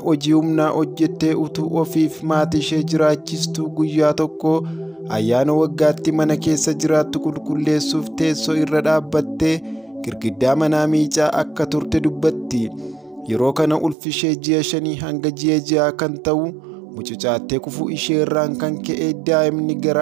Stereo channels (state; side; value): drops out; left; at 14.0 s